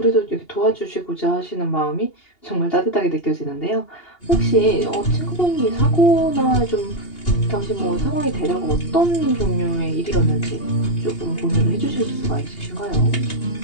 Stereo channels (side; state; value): right; late; 2.8 ms